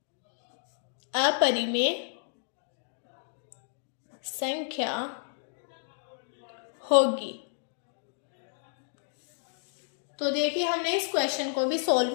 अपरिमेय संख्या होगी। तो देखिए हमने इस क्वेश्चन को भी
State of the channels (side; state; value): right; silent; 57 dB below the other